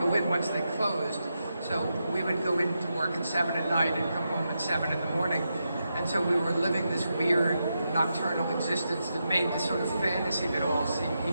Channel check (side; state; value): both; inverted; correlation -0.86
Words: in once they closed. So we would go into work at 7 at night and come home at 7 in the morning. And so we were living this weird nocturnal existence that made this sort of fantasy of it all seem